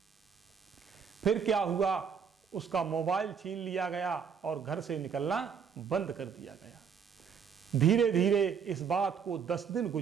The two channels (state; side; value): quieter; left; 6.8 dB